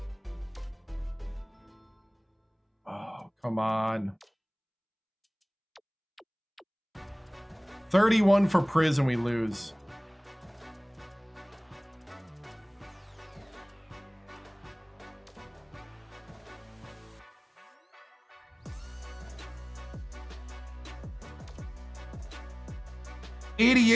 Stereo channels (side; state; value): both; identical; correlation 1.00